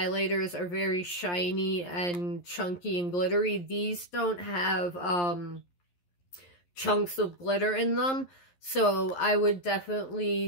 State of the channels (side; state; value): right; late; 11 ms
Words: are very shiny and chunky and glittery. These don't have chunks of glitter in them, so I would